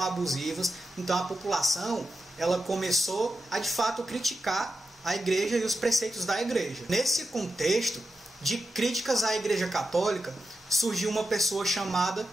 abusivas, então a população ela começou a de fato criticar a igreja e os preceitos da igreja. Nesse contexto de críticas à Igreja Católica, surgiu uma pessoa chamada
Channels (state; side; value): normal; both; correlation 0.90